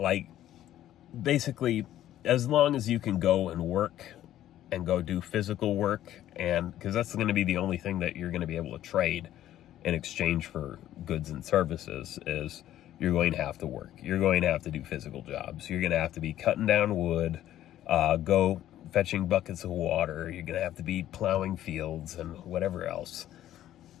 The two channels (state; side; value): quieter; right; 12.6 dB